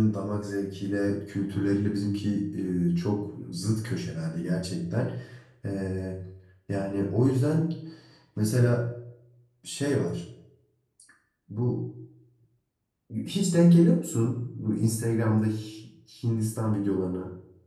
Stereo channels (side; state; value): both; identical; correlation 1.00